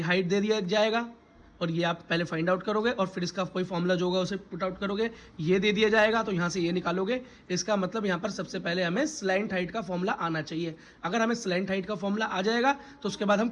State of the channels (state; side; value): identical; both; correlation 1.00